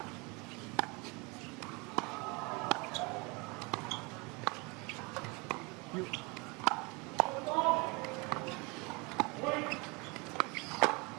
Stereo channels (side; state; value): left; quieter; 28.3 dB